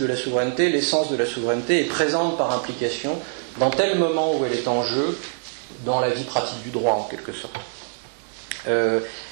la souveraineté, l'essence de la souveraineté est présente par implication dans tel moment où elle est en jeu dans la vie pratique du droit, en quelque sorte.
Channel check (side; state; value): left; silent; 63 dB below the other